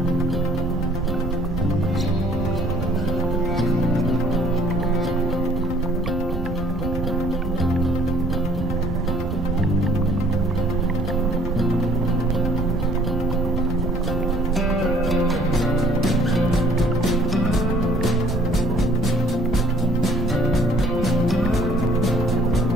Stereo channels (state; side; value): normal; both; correlation 0.57